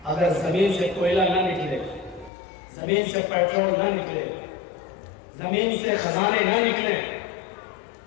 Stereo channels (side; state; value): right; drops out; at 2.3 s